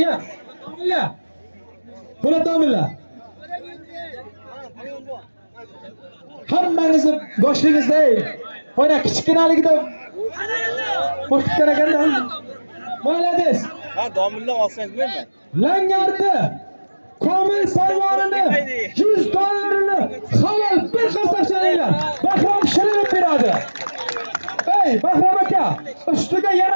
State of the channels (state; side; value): inverted; both; correlation -1.00